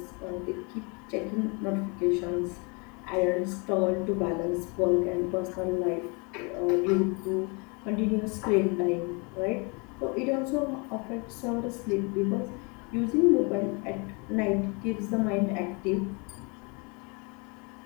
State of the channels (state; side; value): quieter; right; 31.8 dB